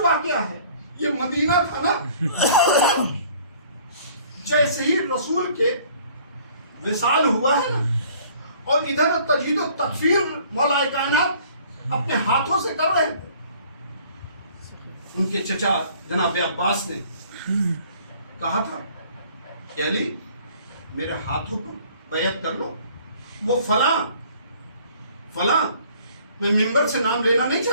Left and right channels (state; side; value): inverted; both; correlation -0.55